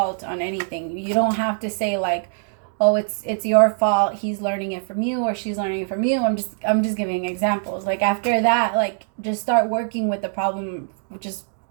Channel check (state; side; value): silent; left; digital silence